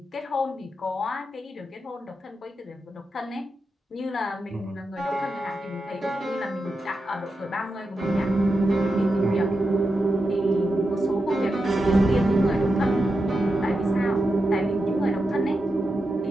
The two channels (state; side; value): normal; both; correlation 0.88